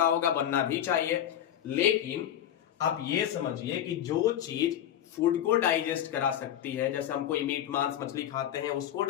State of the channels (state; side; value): quieter; right; 10.8 dB